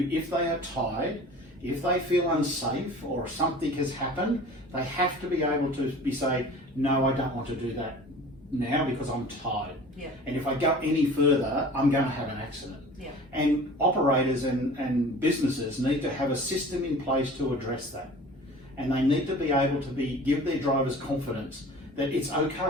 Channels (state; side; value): normal; both; correlation 0.42